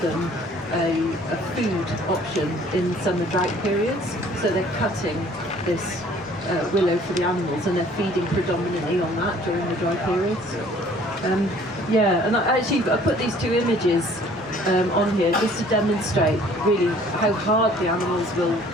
a food option in summer drought periods. So they're cutting this willow for the animals, and they're feeding predominantly on that during the dry periods. Yeah, and I put these two images on here just to demonstrate really how hard the animals will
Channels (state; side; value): normal; both; correlation 0.55